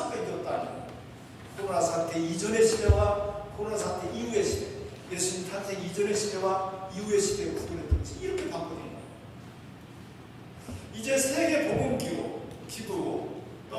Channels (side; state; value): both; identical; correlation 1.00